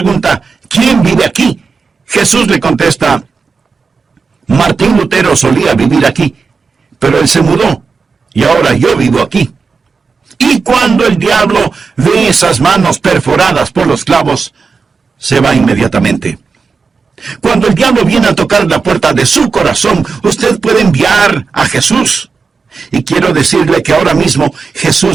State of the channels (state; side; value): quieter; left; 4.9 dB